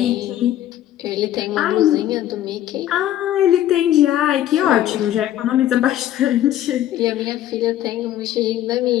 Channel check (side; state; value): right; quieter; 12.4 dB